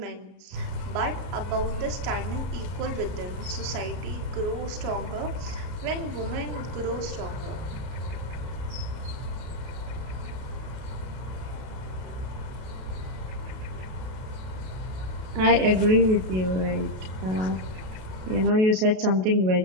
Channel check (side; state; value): left; late; 32 ms